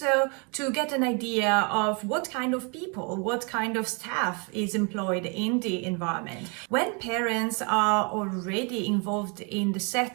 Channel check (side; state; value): left; quieter; 34.0 dB